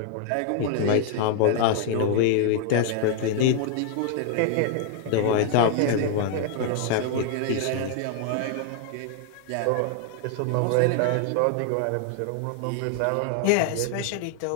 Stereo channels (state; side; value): different; both; correlation 0.00